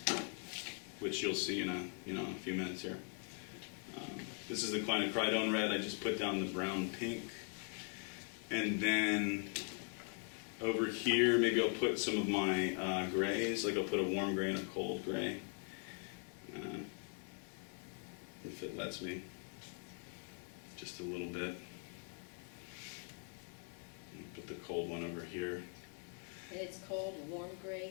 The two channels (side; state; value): right; quieter; 37.2 dB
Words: Which you'll see in a few minutes here. This is the quinacridone red. I just put down the brown pink. And then over here, maybe I'll put some of my grays. Like I'll put a warm gray and a cold gray. If it lets me. Just a little bit. Put the cold one over here. And it's called warm